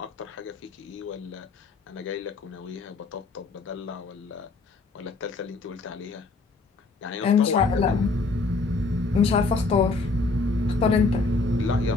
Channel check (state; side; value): quieter; right; 3.7 dB